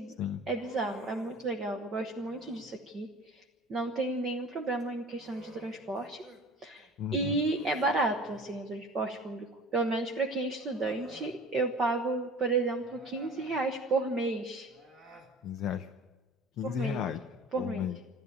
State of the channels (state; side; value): normal; both; correlation 0.42